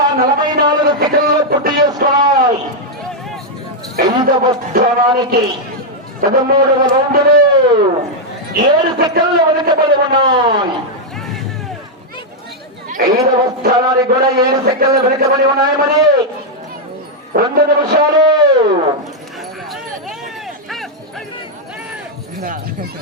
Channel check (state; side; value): normal; both; correlation -0.02